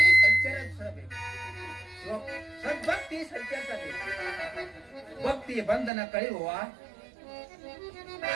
ಸಂಚರಿಸಬೇಕು. ಸದ್ಭಕ್ತಿ ಸಂಚರಿಸಬೇಕು. ಭಕ್ತಿಯ ಬಂಧನ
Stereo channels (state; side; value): drops out; left; at 5.9 s